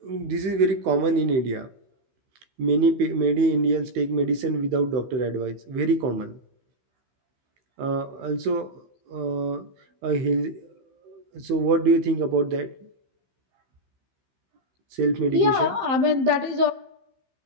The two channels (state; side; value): late; left; 15 ms